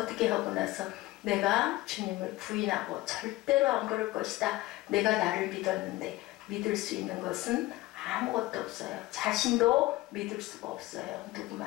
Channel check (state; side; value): quieter; right; 18.7 dB